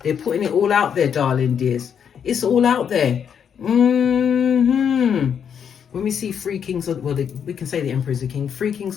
they're putting it all out there, darling dears. It's all out there. When we see three kings, we can say the Emperor is a king. Three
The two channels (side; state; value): right; quieter; 7.8 dB